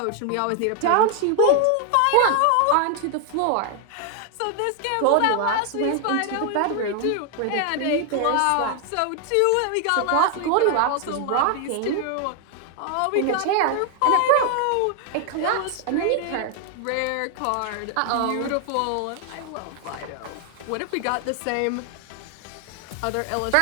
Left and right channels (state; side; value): different; both; correlation 0.00